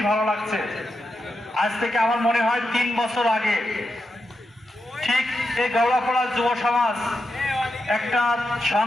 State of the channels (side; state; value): both; normal; correlation 0.87